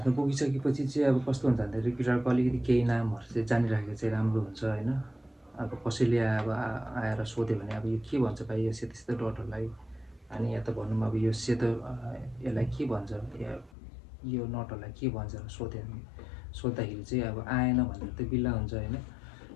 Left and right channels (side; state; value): right; drops out; at 13.7 s